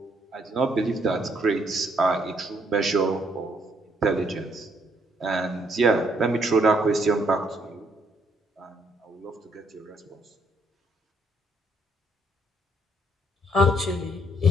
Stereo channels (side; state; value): both; normal; correlation 0.70